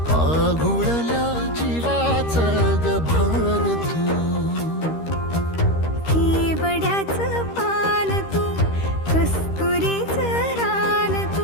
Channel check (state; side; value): late; right; 13 ms